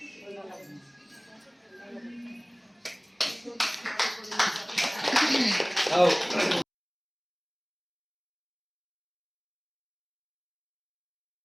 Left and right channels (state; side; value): identical; both; correlation 1.00